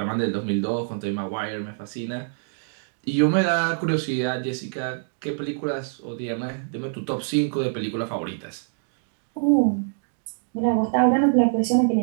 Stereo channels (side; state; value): left; silent; digital silence